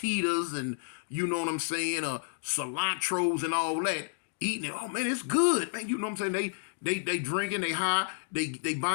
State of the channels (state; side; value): silent; right; digital silence